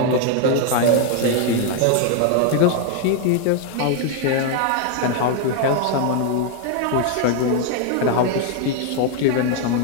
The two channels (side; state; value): both; different; correlation 0.00